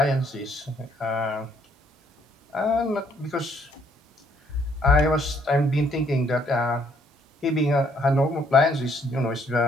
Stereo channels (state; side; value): normal; both; correlation 0.67